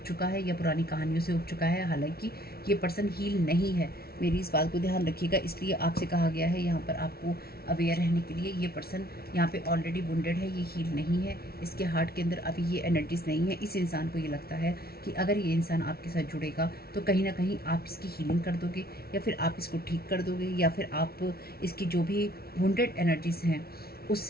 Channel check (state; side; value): late; right; 0.44 ms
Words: चुका है या पुरानी कहानियों से ऊब चुका है। हालांकि ये पर्सन हील नहीं है, मेरी इस बात को ध्यान रखिएगा, इसलिए आपसे कहा गया है यहाँ पर आपको अवेयर रहने के लिए। ये पर्सन यहाँ पे ऑलरेडी वुंडेड है, ये हील नहीं है, इसके हार्ट के अंदर अभी ये एनर्जीज नहीं है। इस इंसान को ये लगता है कि अगर ये इंसान आपके साथ जुड़ेगा तो कहीं ना कहीं आप इसकी हीलिंग कर दोगे, या फिर आप इसको ठीक कर दोगे, या फिर आप इसकी जो भी वुंडेड एनर्जीज हैं